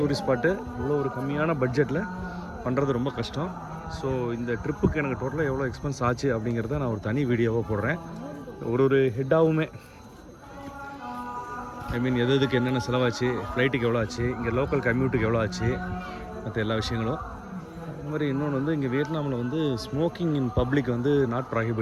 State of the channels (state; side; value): identical; both; correlation 1.00